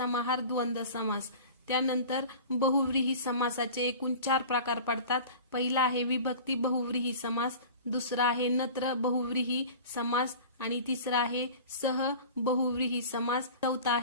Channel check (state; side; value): inverted; both; correlation -0.38